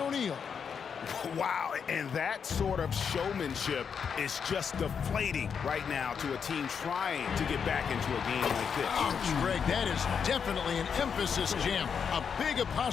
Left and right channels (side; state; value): right; quieter; 6.7 dB